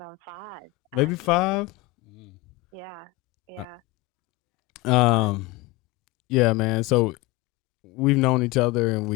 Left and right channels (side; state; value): right; quieter; 20.2 dB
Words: on 5. Maybe actually. 5? Yeah. Yeah, man. So we've known each other and